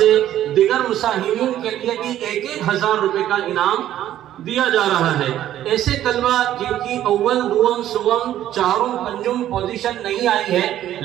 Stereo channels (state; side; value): quieter; left; 12.2 dB